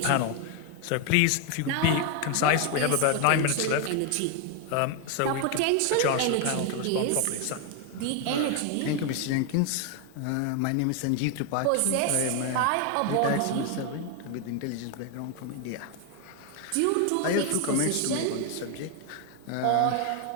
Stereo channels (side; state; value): both; different; correlation 0.01